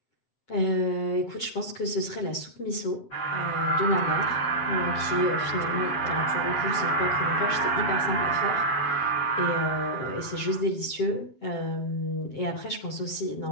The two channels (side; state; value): right; late; 7.5 ms